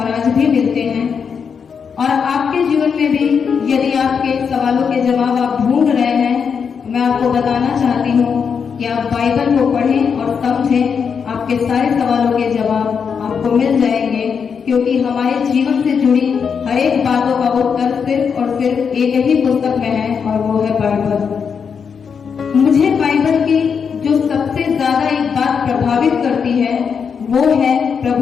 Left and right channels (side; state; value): right; quieter; 6.5 dB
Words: आज भी मिलते हैं। और आपके जीवन में भी यदि आपके सवालों के जवाब आप ढूंढ रहे हैं, तो मैं आपको बताना चाहती हूँ कि आप बाइबल को पढ़ें और समझें, आपके सारे सवालों के जवाब आपको मिल जाएंगे, क्योंकि हमारे जीवन से जुड़ी हर एक बातों का उत्तर सिर्फ और सिर्फ एक ही पुस्तक में है, और वो है बाइबल। मुझे बाइबल की जो सबसे ज्यादा एक बात प्रभावित करती है वो है